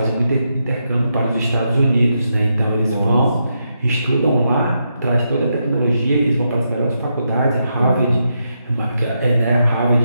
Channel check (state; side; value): inverted; both; correlation -0.83